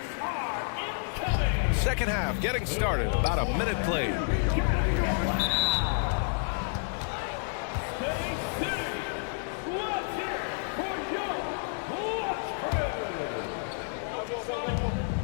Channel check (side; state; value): right; silent; digital silence